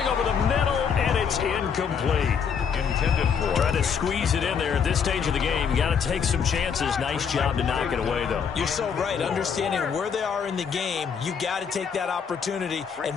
over the middle, and it's incomplete. Intended for. Trying to squeeze it in there at this stage of the game. Got to take some chances. Nice job to knock it away, though. You're so right. Understanding where they are in the game, you got to take that opportunity and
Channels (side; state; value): right; quieter; 6.8 dB